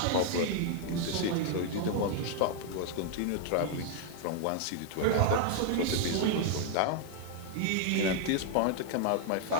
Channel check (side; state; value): both; different; correlation 0.00